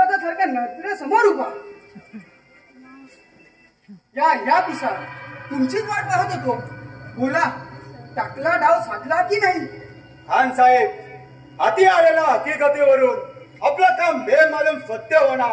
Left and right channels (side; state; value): both; identical; correlation 1.00